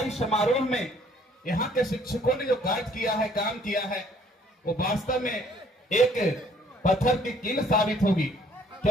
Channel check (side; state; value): both; normal; correlation 0.61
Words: समारोह में यहाँ के शिक्षकों ने जो कार्य किया है, काम किया है, वो वास्तव में एक पत्थर की कील साबित होगी।